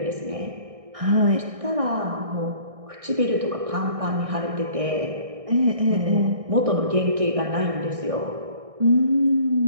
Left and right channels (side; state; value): left; late; 1.6 ms